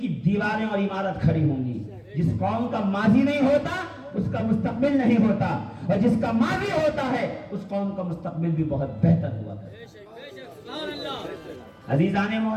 کی دیواریں اور عمارت کھڑی ہوں گی. جس قوم کا ماضی نہیں ہوتا اس کا مستقبل نہیں ہوتا، اور جس کا ماضی ہوتا ہے اس قوم کا مستقبل بھی بہت بہتر ہوا کرتا. عزیزان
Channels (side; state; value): both; identical; correlation 1.00